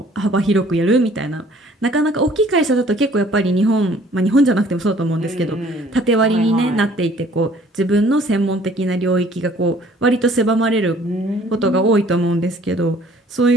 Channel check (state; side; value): normal; both; correlation 0.56